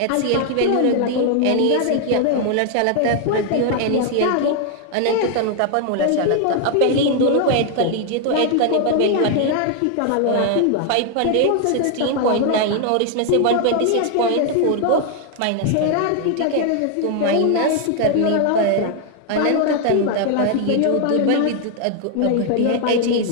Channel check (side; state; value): both; different; correlation 0.00